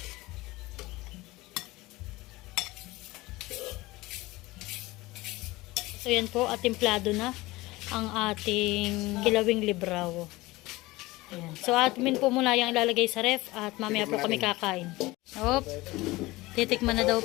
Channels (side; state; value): right; quieter; 20.4 dB